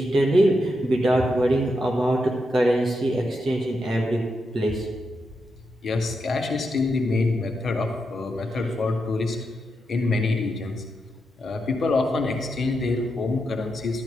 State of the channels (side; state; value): both; normal; correlation 0.85